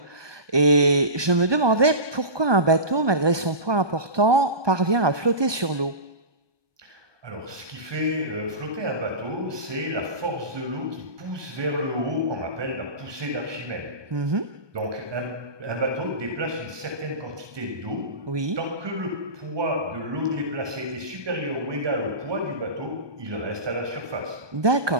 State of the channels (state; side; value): late; left; 1.2 ms